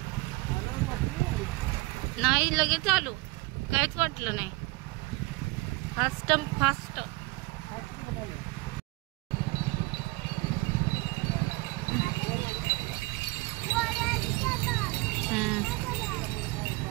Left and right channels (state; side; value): quieter; left; 23.4 dB